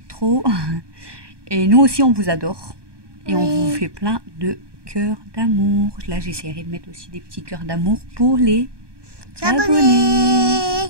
trop. Et nous aussi, on vous adore. Et on Oui. vous fait plein de cœurs d'amour. Là, j'essaierai de mettre aussi des petits cœurs d'amour pour les abonnés.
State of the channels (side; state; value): left; late; 1.2 ms